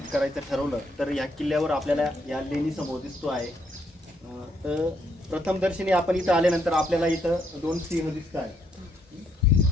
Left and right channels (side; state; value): both; normal; correlation 0.73